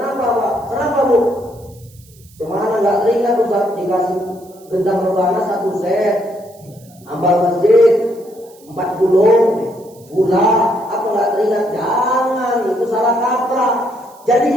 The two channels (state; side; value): noise; right; hiss, 27 dB below the sound